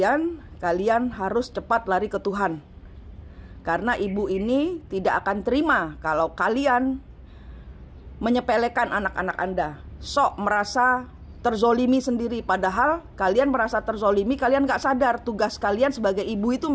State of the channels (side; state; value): both; identical; correlation 1.00